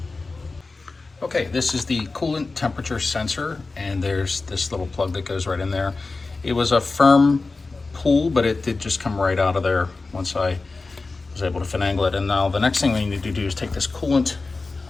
Okay, this is the coolant temperature sensor, and there's this little plug that goes right in there. It was a firm pull, but it did just come right out of there once I was able to finagle it. And now the next thing we need to do is take this coolant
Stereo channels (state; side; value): quieter; right; 3.7 dB